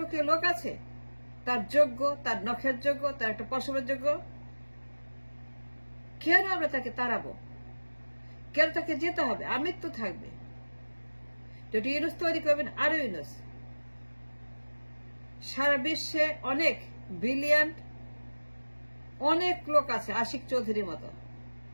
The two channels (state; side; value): inverted; both; correlation -1.00